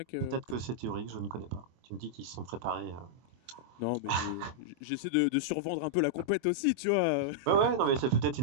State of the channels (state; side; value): late; left; 24 ms